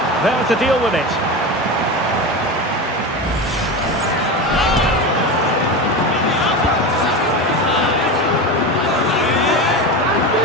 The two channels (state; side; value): normal; both; correlation 0.23